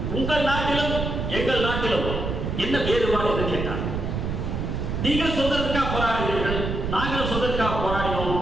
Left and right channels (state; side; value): noise; right; rumble, 3 dB below the sound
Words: உங்கள் நாட்டிலும் எங்கள் நாட்டிலும் என்ன வேறுபாடு என்று கேட்டார். நீங்கள் சுதந்திரத்துக்காக போராடுகிறீர்கள், நாங்களும் சுதந்திரத்துக்காக போராடினோம்,